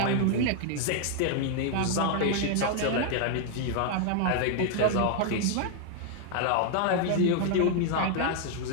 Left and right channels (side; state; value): both; different; correlation 0.00